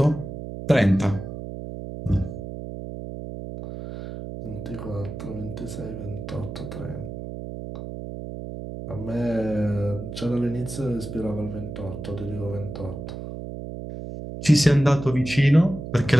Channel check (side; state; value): right; noise; hum, 9 dB below the sound